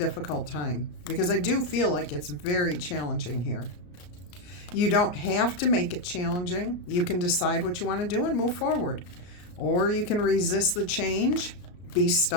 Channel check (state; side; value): late; right; 34 ms